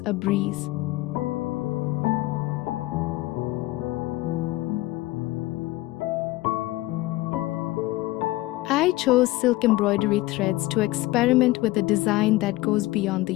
a breeze. I chose silk embroidery threads to experiment with a design that goes beyond the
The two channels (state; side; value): quieter; right; 18.6 dB